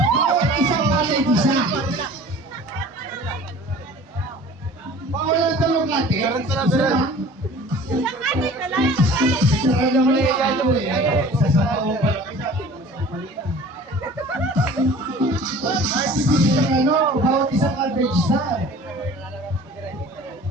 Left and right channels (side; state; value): both; normal; correlation 0.45